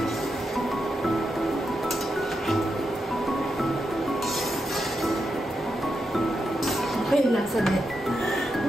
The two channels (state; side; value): normal; both; correlation 0.85